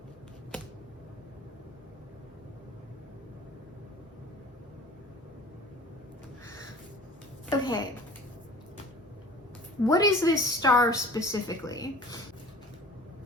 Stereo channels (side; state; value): both; normal; correlation 0.44